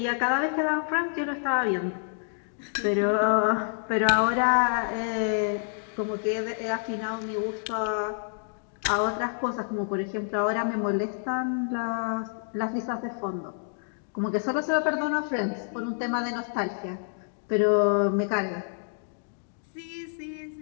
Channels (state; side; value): silent; right; digital silence